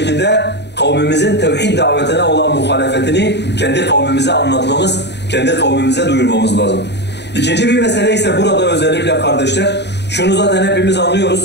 kavmimizin tevhid davetine olan muhalefetini kendi kavmimize anlatmamız, kendi kavmimize duyurmamız lazım. İkinci bir mesele ise burada özellikle kardeşler, şunu zaten hepimiz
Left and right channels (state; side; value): late; right; 0.50 ms